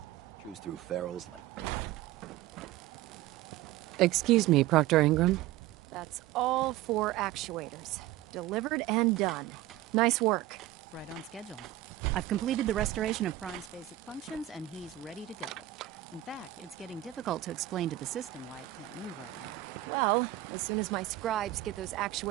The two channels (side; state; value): left; quieter; 15.1 dB